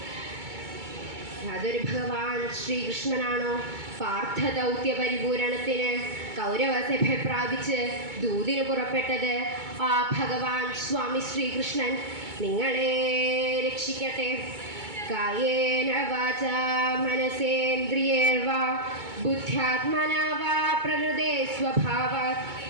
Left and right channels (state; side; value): late; left; 2.2 ms